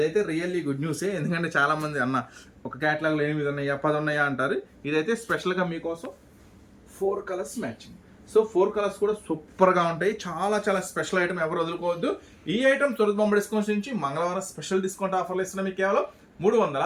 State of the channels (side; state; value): both; identical; correlation 1.00